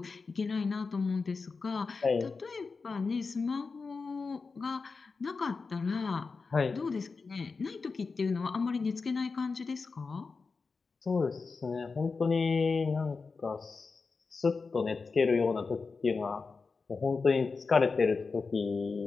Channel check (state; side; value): quieter; right; 4.5 dB